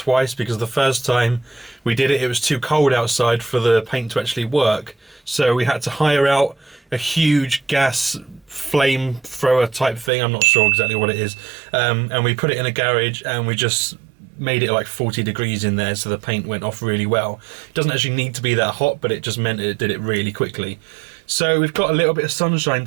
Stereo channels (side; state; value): left; drops out; at 10.1 s